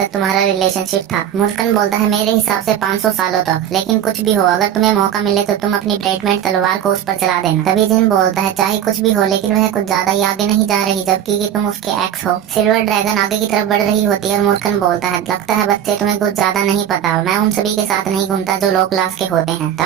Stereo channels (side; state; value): left; quieter; 10.1 dB